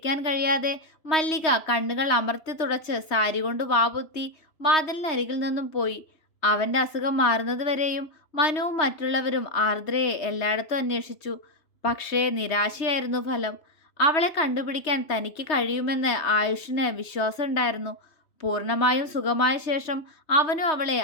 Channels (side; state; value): right; late; 3.2 ms